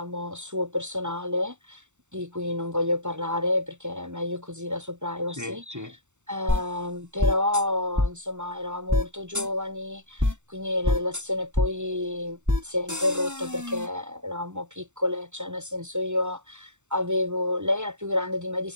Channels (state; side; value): late; left; 0.84 ms